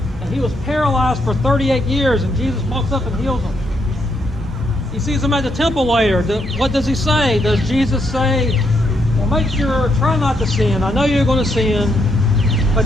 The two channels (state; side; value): normal; both; correlation 0.77